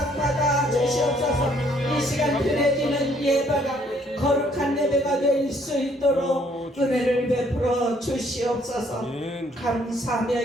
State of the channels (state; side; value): normal; both; correlation 0.65